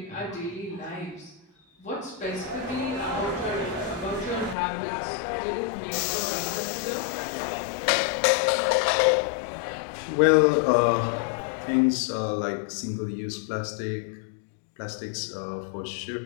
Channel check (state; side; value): drops out; right; at 4.5 s